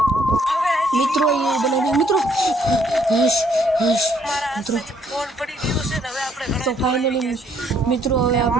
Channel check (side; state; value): both; normal; correlation 0.67